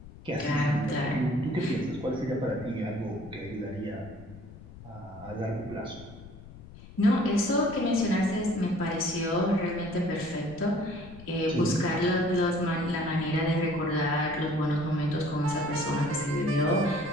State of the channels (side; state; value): left; noise; rumble, 17 dB below the sound